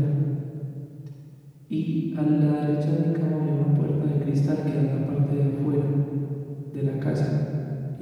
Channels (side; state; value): both; identical; correlation 1.00